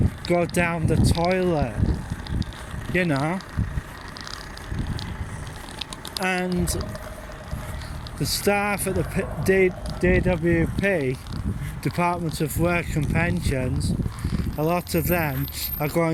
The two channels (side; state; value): both; identical; correlation 1.00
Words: go down the toilet, you know. And the staff at the DWP, Department of Work and Pensions, a lot of them are